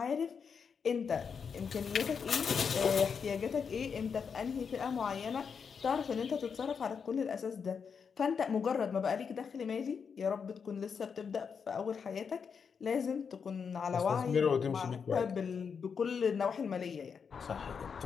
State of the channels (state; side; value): quieter; right; 6.2 dB